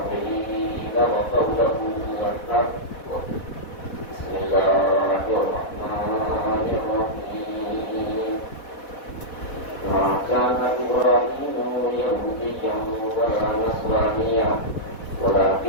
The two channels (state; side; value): late; right; 4.1 ms